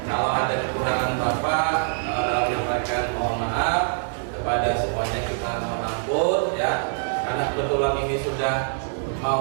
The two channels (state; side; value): silent; left; 57 dB below the other